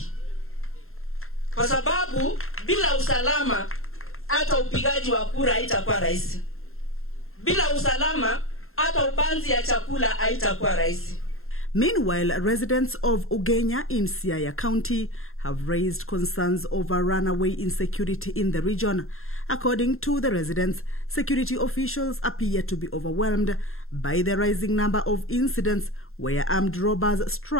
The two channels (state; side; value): late; right; 0.61 ms